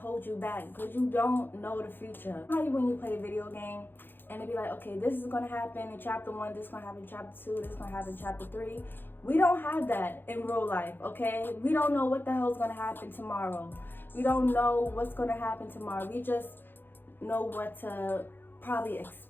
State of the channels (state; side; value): late; right; 0.098 ms